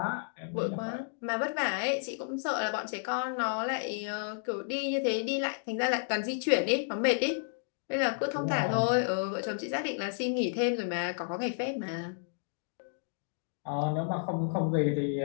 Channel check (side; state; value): right; silent; digital silence